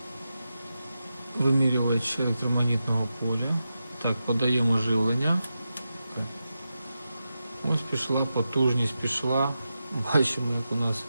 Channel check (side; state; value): both; inverted; correlation -0.90